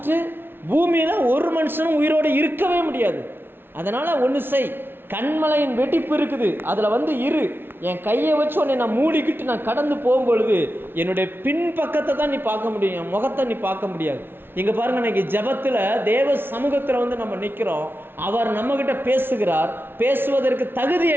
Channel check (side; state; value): left; late; 0.11 ms